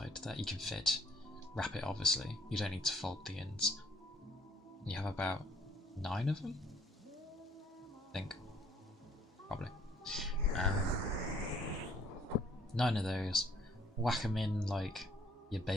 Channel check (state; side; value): normal; both; correlation 0.62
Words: that you can fit. Wrap it, obviously. You don't need to fold the ends. You have about 9 of them? I think. Probably. 9 of those. Whack them in like you're